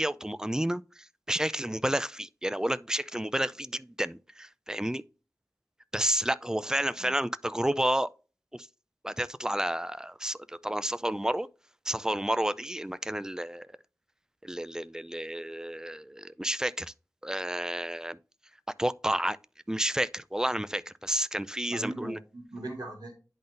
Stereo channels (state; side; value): normal; both; correlation 0.85